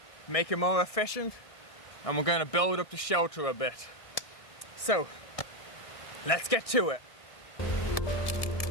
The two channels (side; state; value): right; late; 1.6 ms